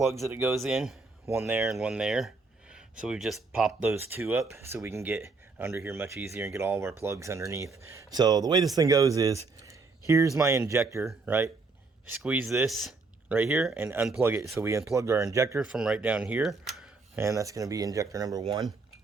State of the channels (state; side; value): quieter; left; 4.0 dB